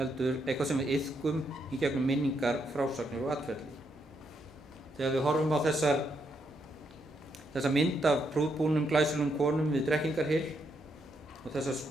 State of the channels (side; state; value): both; normal; correlation 0.78